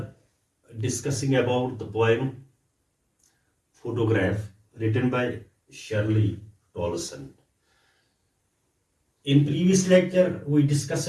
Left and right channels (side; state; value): both; identical; correlation 1.00